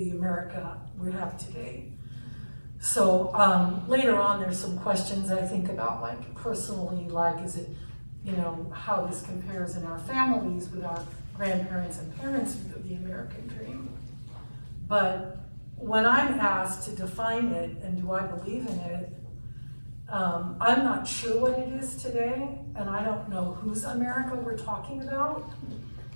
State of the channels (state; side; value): inverted; both; correlation -1.00